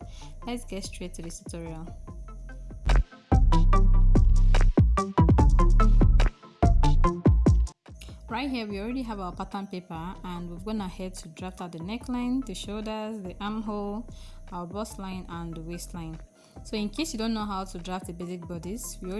Let's get straight to this tutorial. Right here we already have our pattern paper and we've gone ahead to draft out the neckline, the shoulders, the armhole, our bust line and the waistline. So in case you don't know how to draft the basic bodies, we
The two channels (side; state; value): both; identical; correlation 1.00